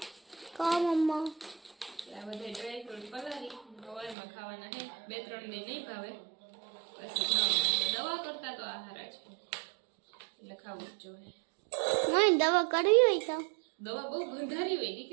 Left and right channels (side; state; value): left; drops out; at 4.2 s